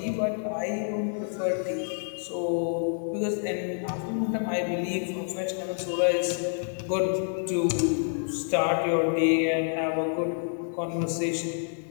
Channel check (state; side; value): silent; right; digital silence